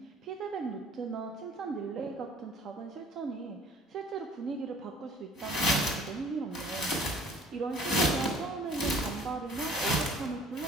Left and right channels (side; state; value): both; normal; correlation 0.53